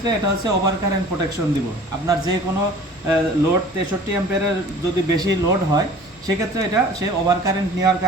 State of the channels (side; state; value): both; normal; correlation 0.46